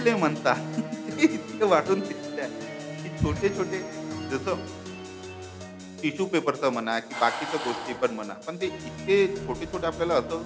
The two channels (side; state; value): both; identical; correlation 1.00